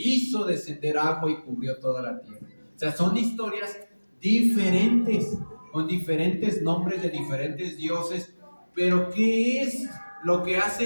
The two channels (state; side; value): inverted; both; correlation -1.00